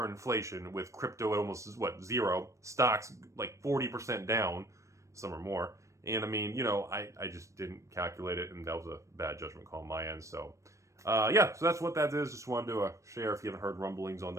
inflation, with crypto at almost, zero, stocks like 40% down, some or more. And I mean, I just didn't calculate it, and that was a bad judgment call on my end. So, yeah, so that's what that is. Just wanted to share if you haven't heard rumblings on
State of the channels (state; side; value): late; left; 0.15 ms